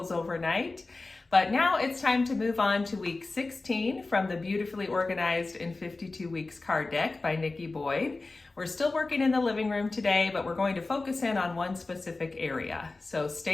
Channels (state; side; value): quieter; right; 3.4 dB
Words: overnight, but now it's time to move on to week 16 from the Beautifully Organized in 52 Weeks card deck by Nikki Boyd. We're still working in the living room today, but we're going to focus in on one specific area. So